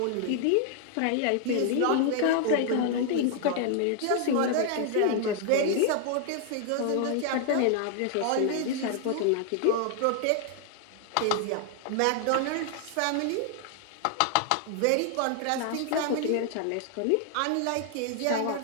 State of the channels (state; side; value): different; both; correlation 0.00